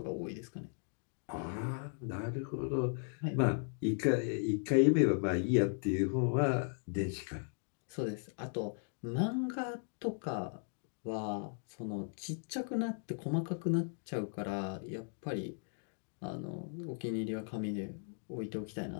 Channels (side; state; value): right; silent; 53 dB below the other